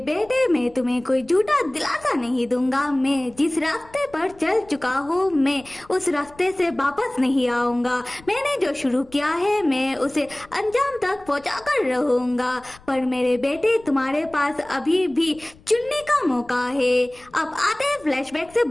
मैं तुम्हें कोई झूठा दिलासा नहीं दूंगा। मैं जिस रास्ते पर चल चुका हूँ मैं उस रास्ते से वापस नहीं आऊंगा। मैंने जो शुरू किया है मैं उसे अंजाम तक पहुँचा कर रहूंगा। पर मेरे बेटे, तुम्हारे पास अभी भी चुनने का मौका है। अब आते हैं फ्लैशबैक से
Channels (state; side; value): noise; left; rumble, 25 dB below the sound